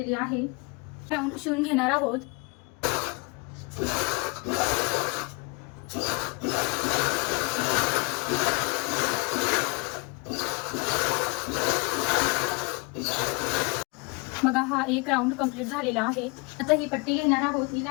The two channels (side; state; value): right; quieter; 30.7 dB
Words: आहे। राऊंड शिवून घेणार आहोत। बघा हा एक राऊंड कंप्लीट झालेला आहे। आता ही पट्टी घेणार आहोत, हिला